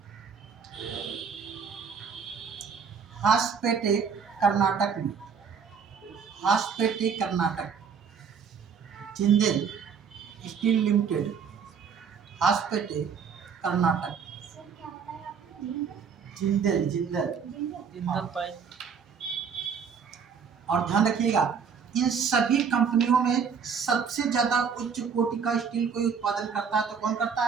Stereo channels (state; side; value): quieter; left; 6.4 dB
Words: हासपेटे कर्नाटक में, Hosapete Karnataka. Jindal steel limited, Hosapete Karnataka. Jindal, Jindal, Jindal pipe. और ध्यान रखिएगा, इन सभी कंपनियों में सबसे ज्यादा उच्च कोटि का स्टील कोई उत्पादन करता है तो कौन करता